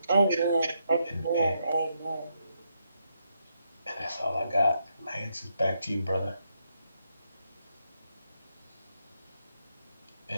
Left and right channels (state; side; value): inverted; both; correlation -0.80